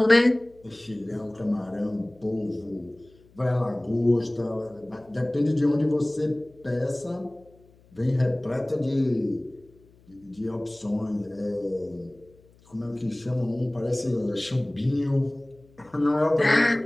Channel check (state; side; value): noise; left; hum, 29 dB below the sound